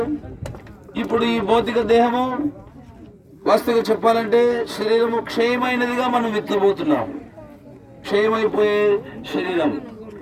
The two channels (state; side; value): identical; both; correlation 1.00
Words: ఇప్పుడు ఈ భౌతిక దేహము వాస్తవంగా చెప్పాలంటే శరీరము క్షయమైనదిగా మనం విత్తబోతున్నాం. క్షయమైపోయే శరీరం.